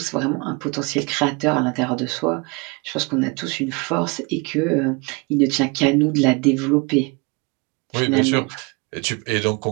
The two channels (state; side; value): quieter; left; 28.5 dB